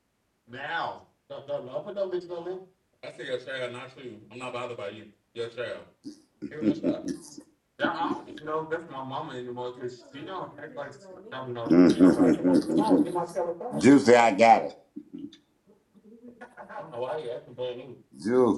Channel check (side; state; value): both; identical; correlation 1.00